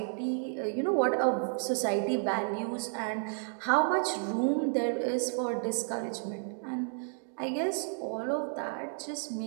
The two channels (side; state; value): left; silent; 57 dB below the other